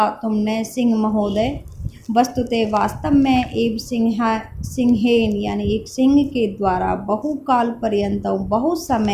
तुमने सिंह महोदय। वस्तुतः वास्तव में एव सिंहेन, यानी एक सिंह के द्वारा बहुकाल पर्यंत, बहुत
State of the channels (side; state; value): both; identical; correlation 1.00